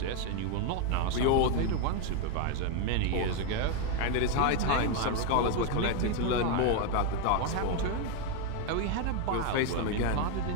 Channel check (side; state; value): both; different; correlation 0.01